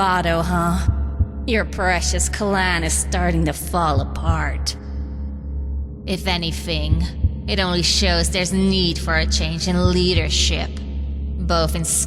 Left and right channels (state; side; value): identical; both; correlation 1.00